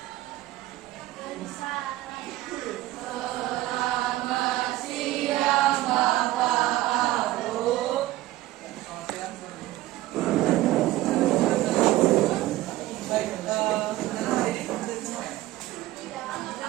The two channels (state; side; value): quieter; left; 16.3 dB